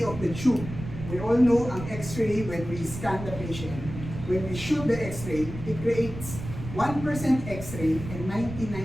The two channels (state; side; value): noise; right; rumble, 10 dB below the sound